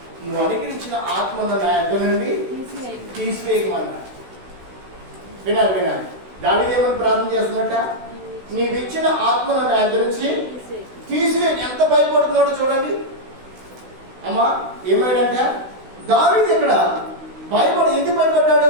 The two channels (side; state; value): left; late; 16 ms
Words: నువ్వు అనుగ్రహించిన ఆత్మను నా యొద్ద నుండి తీసివేయమన్నాడు. వినాలి. దావీదు ఏమని ప్రార్థన చేస్తున్నట్ట, నీవిచ్చిన ఆత్మను నా యొద్ద నుంచి తీసివే. ఎంత భయపడుతున్నాడో చూడండి అమ్మా. ఏమాడంట దావీదు ఇక్కడ భయపడి, ఎందుకు భయపడ్డాడు?